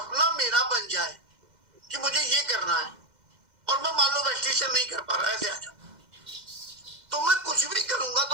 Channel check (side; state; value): left; late; 2.0 ms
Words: मेरा बन जाए कि मुझे ये करना है और मैं मान लो वेस्टिशन नहीं कर पा रहा, ऐसे आ जाओ, तो मैं कुछ भी करूंगा